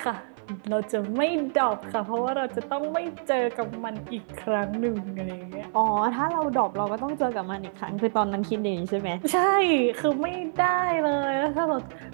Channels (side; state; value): left; silent; 60 dB below the other